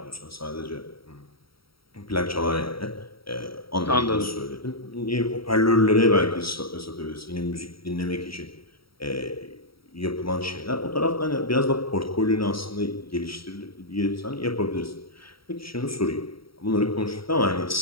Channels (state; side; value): late; right; 0.75 ms